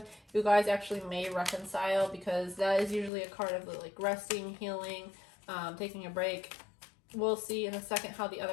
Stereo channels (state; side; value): drops out; right; at 3.1 s